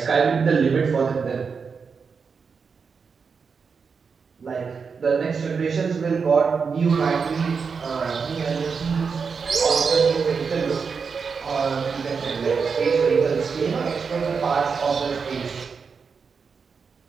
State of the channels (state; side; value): quieter; left; 5.5 dB